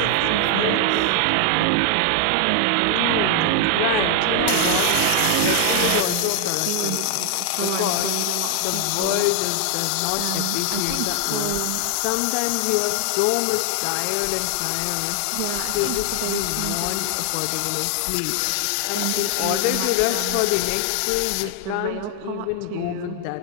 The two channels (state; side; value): different; both; correlation 0.00